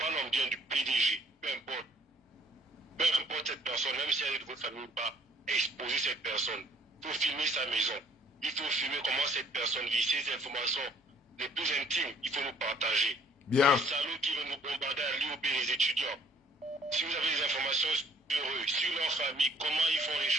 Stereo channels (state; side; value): normal; both; correlation 0.60